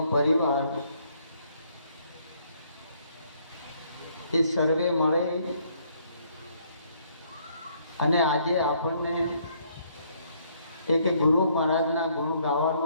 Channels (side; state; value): both; inverted; correlation -0.67